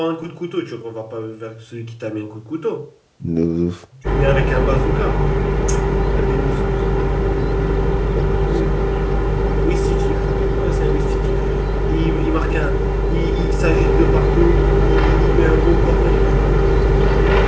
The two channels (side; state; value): both; identical; correlation 1.00